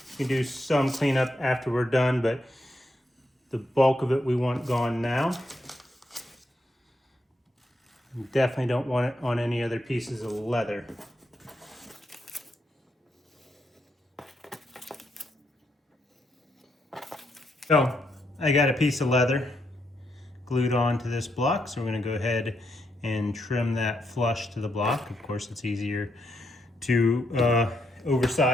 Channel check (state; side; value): normal; both; correlation 0.80